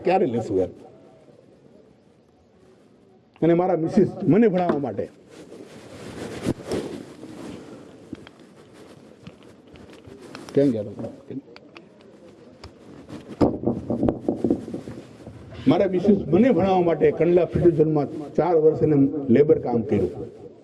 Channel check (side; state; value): both; identical; correlation 1.00